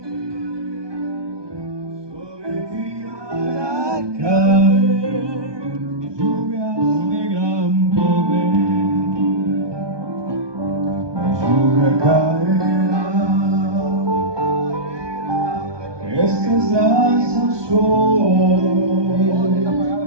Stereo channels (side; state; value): left; late; 1.2 ms